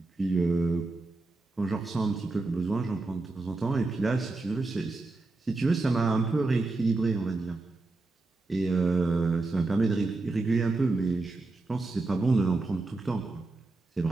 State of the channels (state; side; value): quieter; left; 3.3 dB